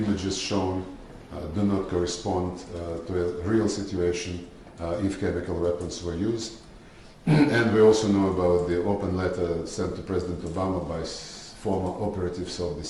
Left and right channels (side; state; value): both; identical; correlation 1.00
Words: shown do not correspond to a real situation if chemical weapons were used. And we also know about the open letter sent to President Obama by former operatives of the